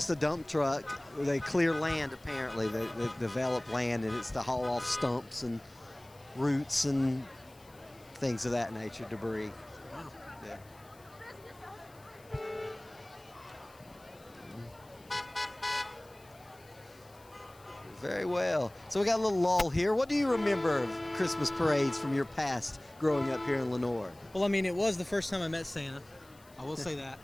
a dump truck. They clear land, apparently. They develop land, and it's to haul off stumps and roots and things of that nature, debris. Yeah. Very well. So we got a little lull here. What do you remember of Christmas parades from your past growing up here in Lenoir? Well, I mean, it was the first time I met Santa. I will say that.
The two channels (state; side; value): noise; left; hiss, 27 dB below the sound